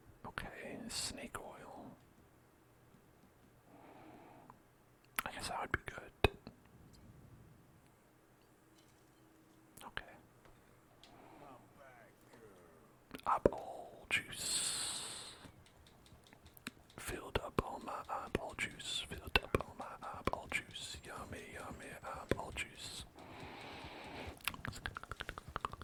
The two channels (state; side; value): identical; both; correlation 1.00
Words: Okay, snake oil. I guess that would be good. Okay. I'm back, girl. Eyeball juice. Filled up all my eyeball juice. Filled up all my eyeball juice. Yummy, yummy eyeball juice.